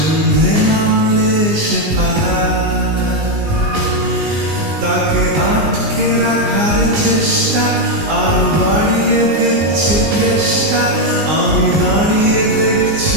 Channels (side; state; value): left; late; 19 ms